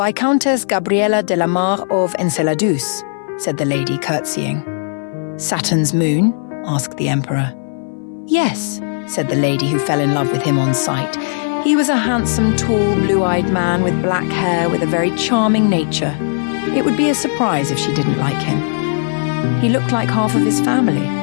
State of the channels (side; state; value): right; silent; 61 dB below the other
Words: Gabriella de la Mar of Enceladus," said the lady, curtsying. "Saturn's moon?" asked the Emperor. "Yes," said the lady, who fell in love with him on sight. He was a handsome, tall, blue-eyed man with black hair with a very charming nature. It would be a surprise if she didn't like him. He looked like half of his family.